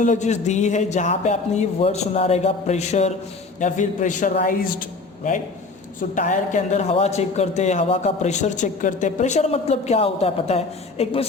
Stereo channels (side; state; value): right; quieter; 3.8 dB